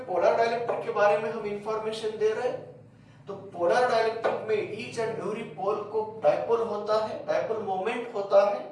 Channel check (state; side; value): identical; both; correlation 1.00